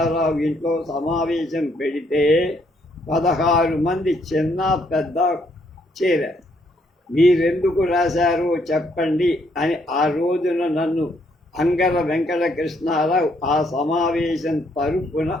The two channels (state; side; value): normal; both; correlation 0.71